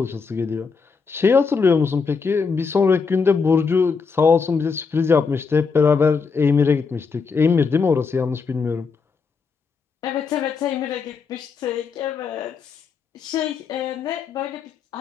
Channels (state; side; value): quieter; right; 5.2 dB